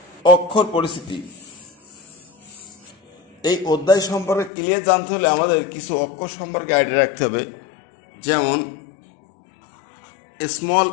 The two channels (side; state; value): right; drops out; at 4.5 s